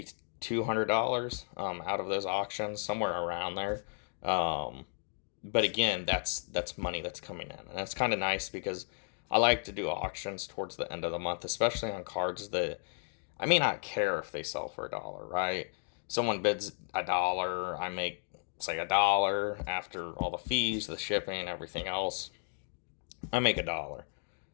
$200 out of those auctions, somewhere around there. But again, that's money that's coming in, and it's kind of nice because I like to do auctions towards the end of the month, especially on cards that I may not care if they sell for $1, right? Someone bids $1, I make say $1 after all the fees, the shipping, everything else. I make $1.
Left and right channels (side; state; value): right; silent; 55 dB below the other